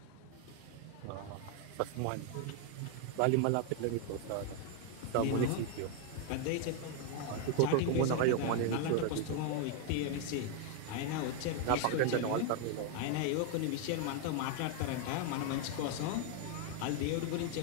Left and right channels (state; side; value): different; both; correlation 0.01